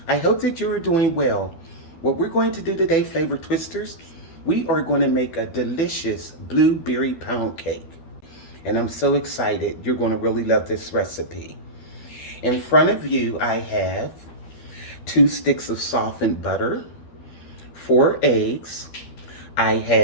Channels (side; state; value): right; late; 13 ms